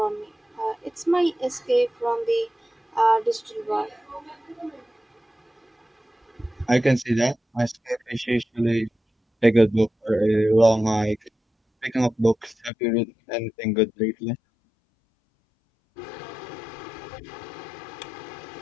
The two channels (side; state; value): right; drops out; at 12.7 s